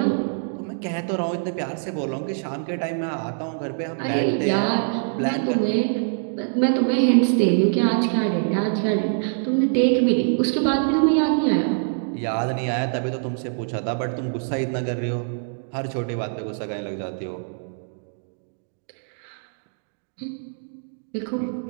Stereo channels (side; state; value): left; silent; digital silence